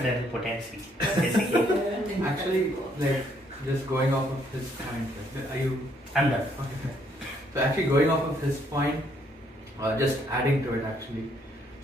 potency, basically. Actually, like, just going off of his point, like, are you? I'm done. Okay. So actually, going off of his point, just adding to it actually.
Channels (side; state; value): both; normal; correlation 0.69